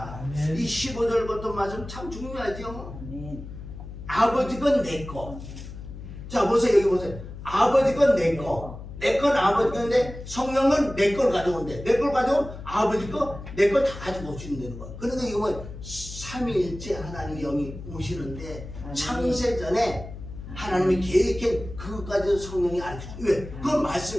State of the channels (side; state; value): left; noise; hum, 12 dB below the sound